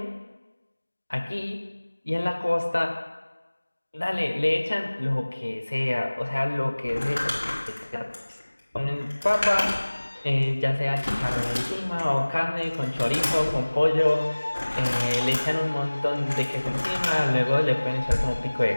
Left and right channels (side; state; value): both; inverted; correlation -1.00